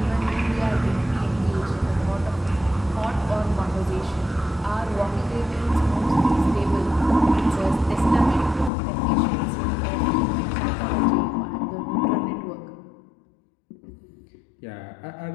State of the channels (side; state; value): right; drops out; at 8.7 s